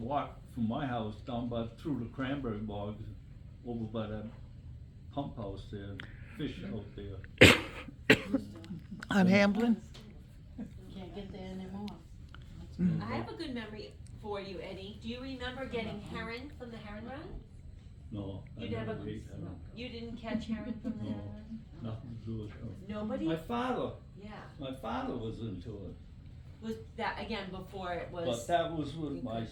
from my house down through the cranberry bogs, over by that pump house there, and fish out there. On Hamblin? Can't get there anymore. I have a good memory for you, Eddie. Do you remember getting herring from the herring run? No, I You never, never ate herring. you didn't catch herring from there? No, nothing to do with herring. Nobody? My father Yeah. was into it, Was that, again, before it but was, that was when my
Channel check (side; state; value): both; identical; correlation 1.00